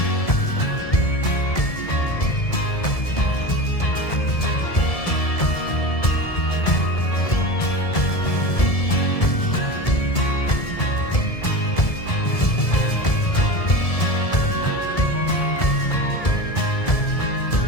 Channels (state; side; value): late; right; 1.7 ms